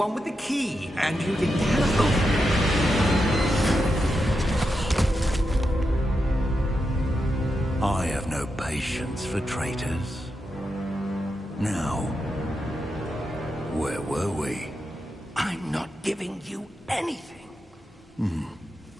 with the key, and you didn't have... I have no patience for traitors. Now, where were we? I'm not giving you anything.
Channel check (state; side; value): normal; both; correlation 0.87